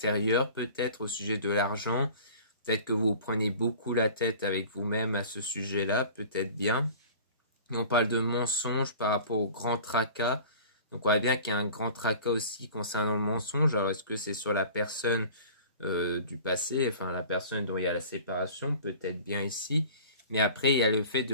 peut-être au sujet de l'argent? Peut-être que vous prenez beaucoup la tête avec vous-même à ce sujet-là, peut-être bien. Et on parle de mensonge par rapport au grand tracas. Donc on voit bien qu'il y a un grand tracas aussi concernant le mensonge. Alors est-ce que c'est sur la personne du passé, enfin la personne dont il y a la séparation, peut-être bien ici. Mais après il y a le fait de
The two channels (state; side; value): inverted; both; correlation -0.43